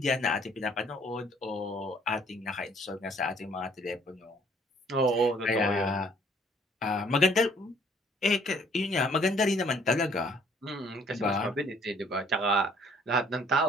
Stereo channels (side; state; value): both; normal; correlation 0.60